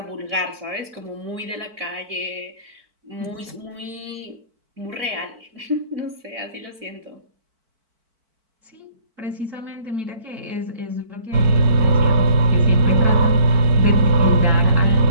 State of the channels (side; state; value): left; late; 4.5 ms